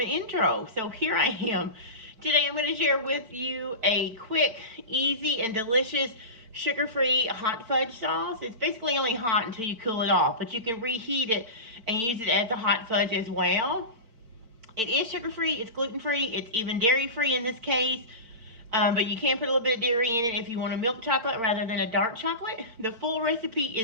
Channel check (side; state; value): left; late; 4.4 ms